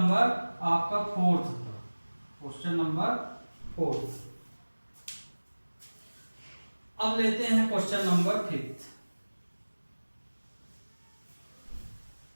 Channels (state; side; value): inverted; both; correlation -1.00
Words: आपका 4th था, क्वेश्चन नंबर 4th। अब लेते हैं क्वेश्चन नंबर 5th।